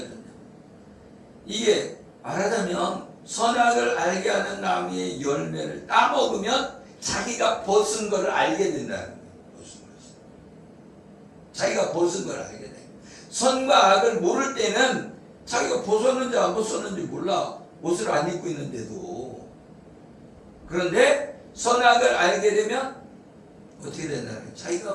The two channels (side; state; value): both; identical; correlation 1.00